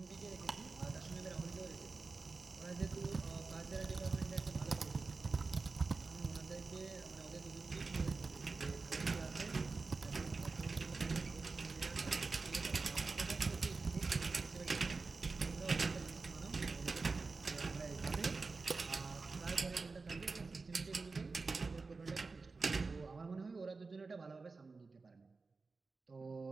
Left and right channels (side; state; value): left; quieter; 4.1 dB